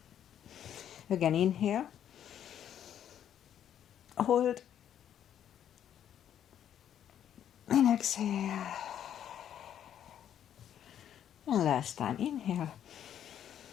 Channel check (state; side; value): quieter; right; 9.9 dB